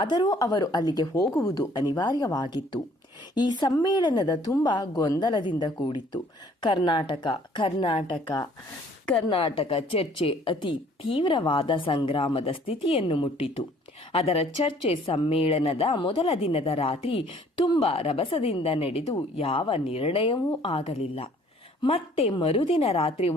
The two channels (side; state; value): both; normal; correlation 0.57